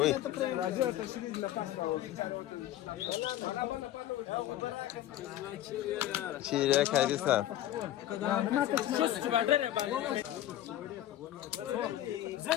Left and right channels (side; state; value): right; quieter; 13.1 dB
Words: راجع تشريد لباس شيرة كارثة